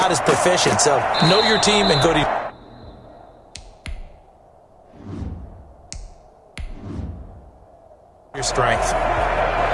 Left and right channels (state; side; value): identical; both; correlation 1.00